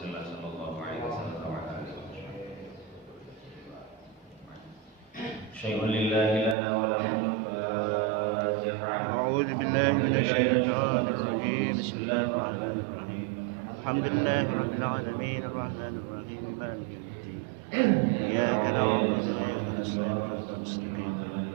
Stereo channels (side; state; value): left; drops out; at 6.6 s